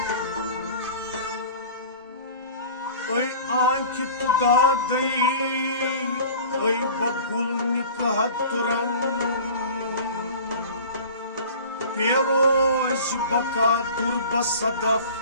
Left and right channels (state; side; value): inverted; both; correlation -0.41